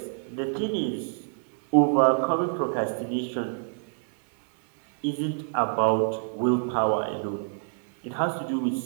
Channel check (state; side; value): silent; left; digital silence